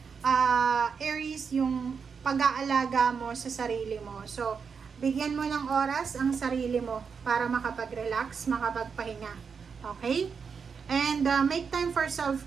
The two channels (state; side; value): quieter; left; 6.0 dB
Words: Aries, yung pag-aalaga mo sa sarili mo. So, bigyan mo ng oras ang sarili mo para makapag-relax, makapagpahinga. Okay? And make time for